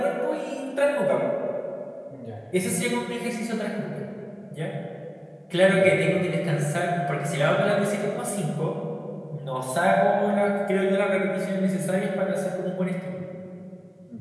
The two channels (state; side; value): identical; both; correlation 1.00